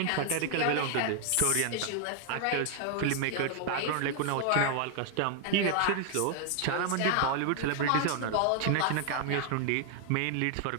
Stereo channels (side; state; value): both; different; correlation 0.00